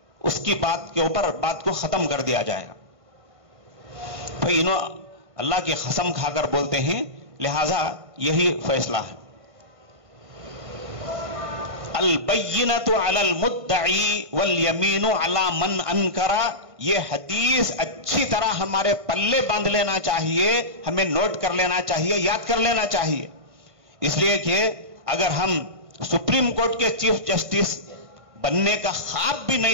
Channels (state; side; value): late; left; 1.5 ms